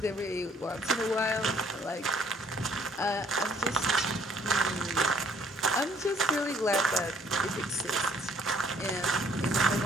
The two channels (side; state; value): both; normal; correlation 0.61